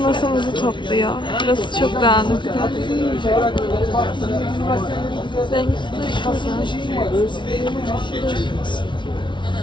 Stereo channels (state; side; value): late; right; 0.24 ms